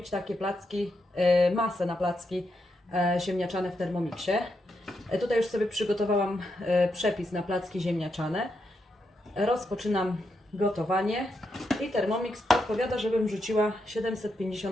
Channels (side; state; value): both; normal; correlation 0.83